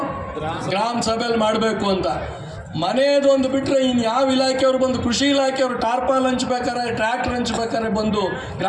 ಗ್ರಾಮ ಸಭೆಯಲ್ಲಿ ಮಾಡಬೇಕು ಅಂತ. ಮನೆಯದೊಂದು ಬಿಟ್ಟರೆ ಇನ್ನು ಯಾವ ಇಲಾಖೆಯವರು ಬಂದು, ಕೃಷಿ ಇಲಾಖೆಯವರು ಟಾರ್ಪಾಲ್ ಹಂಚ್ಬೇಕಾರೆ, ಟ್ರ್ಯಾಕ್ಟರ್ ಹಂಚ್ಬೇಕಾರೆ ಬಂದು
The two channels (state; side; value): identical; both; correlation 1.00